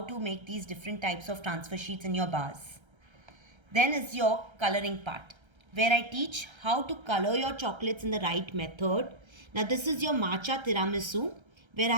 to make these different types of transfer sheets in your bars. Then is your coloring part, where I teach how to color your chocolates in the right method. Now this is your matcha tiramisu, where I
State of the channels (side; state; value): left; late; 1.3 ms